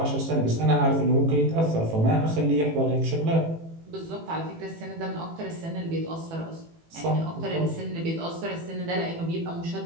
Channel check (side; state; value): left; late; 18 ms